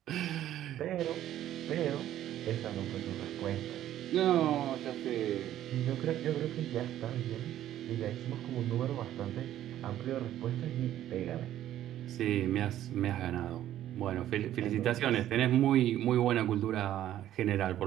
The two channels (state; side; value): quieter; left; 12.3 dB